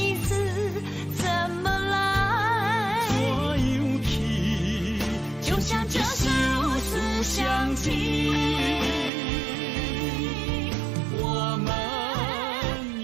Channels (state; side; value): drops out; left; at 9.1 s